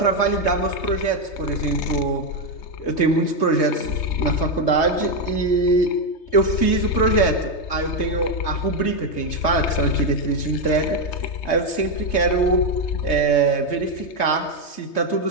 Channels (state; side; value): late; right; 3.3 ms